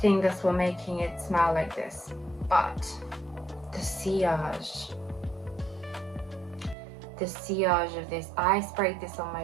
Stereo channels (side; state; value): left; drops out; at 6.8 s